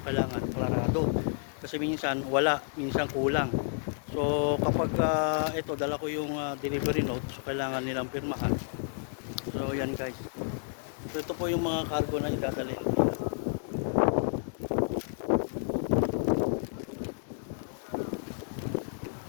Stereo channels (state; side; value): silent; right; digital silence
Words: kailangan parado. Kasi minsan wala, minsan kulang. So kapag ito dala ko yung delivery note, so kailangan nilang pirmahan. So yan guys. So ito po yung mga cargo na idadalhin.